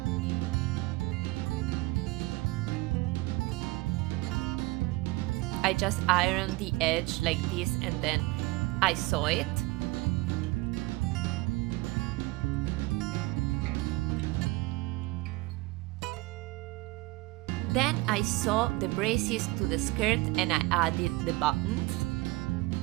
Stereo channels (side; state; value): left; quieter; 21.6 dB